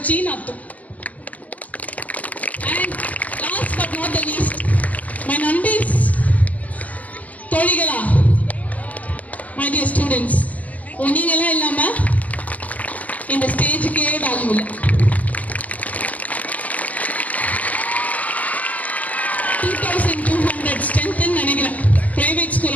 அர்த்தம். And last but not the least, my நண்பீஸ், தோழிகளா, மை டியர் ஸ்டூடெண்ட்ஸ், நீங்களாம் இல்லாம இந்த ஸ்டேஜுக்கே வேல்யூ இல்லை. 2200 ஸ்ட்ரென்த் நினைக்கிறேன். பிரைவேட்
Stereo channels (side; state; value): right; late; 0.076 ms